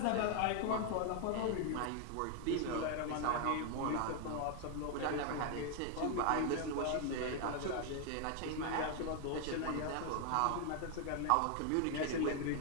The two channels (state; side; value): different; both; correlation 0.00